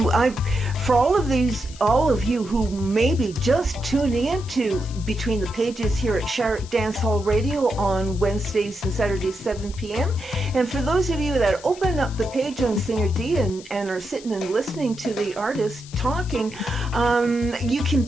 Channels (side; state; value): left; noise; hiss, 19 dB below the sound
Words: for all of you who may be just tuning into Between the Pages here at Shark Dance Hall Radio on Wednesdays and Saturdays 7 p.m. and for those of you that open up the page on Singer Dee and are sitting and listening to the artist talking, you can